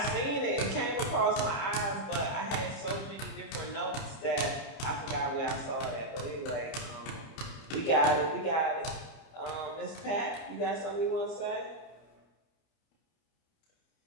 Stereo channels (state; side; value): late; right; 30 ms